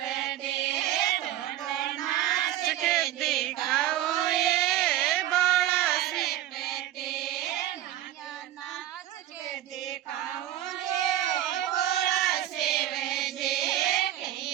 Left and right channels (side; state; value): left; quieter; 13.1 dB